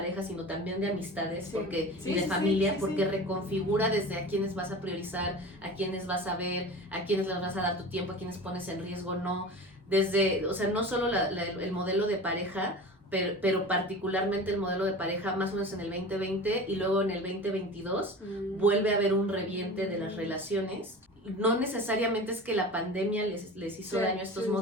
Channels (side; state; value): both; normal; correlation 0.34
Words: sino también de amistades, y de familia, porque reconfigura desde a quiénes vas a priorizar, a quiénes vas a ver, a quiénes les vas a dar tu tiempo, a quiénes pones en riesgo, no. Desde, o sea, no solo el modelo de pareja, pero particularmente el modelo de pareja más o menos en el 2020, y luego en el 2022 vuelve a haber un reviente de las relaciones. No necesariamente es que la pandemia les hizo daño a estos